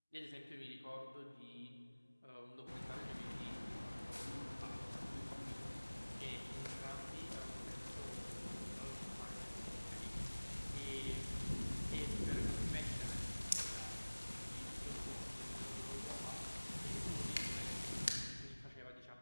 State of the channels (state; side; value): inverted; both; correlation -1.00